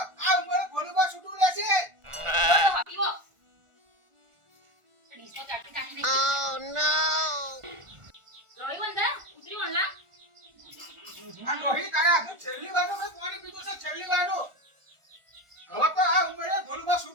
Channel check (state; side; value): late; left; 1.4 ms